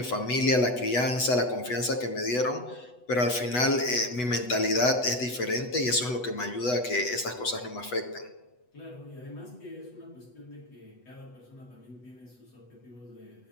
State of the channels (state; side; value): late; right; 8.1 ms